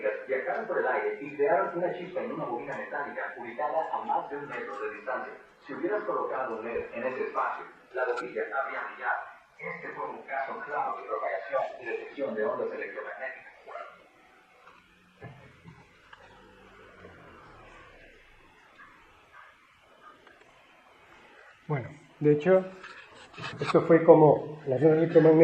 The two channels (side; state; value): both; identical; correlation 1.00